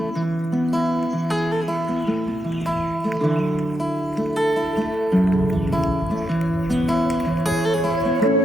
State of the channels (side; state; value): both; normal; correlation 0.83